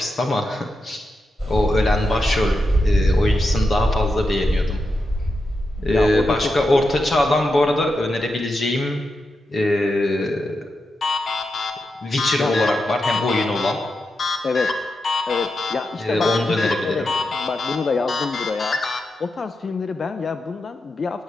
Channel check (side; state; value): both; normal; correlation 0.88